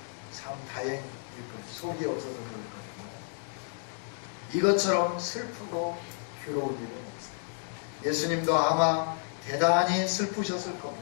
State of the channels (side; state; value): right; silent; 57 dB below the other